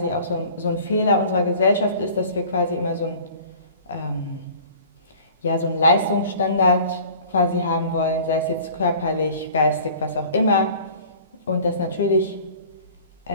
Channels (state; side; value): inverted; both; correlation -0.46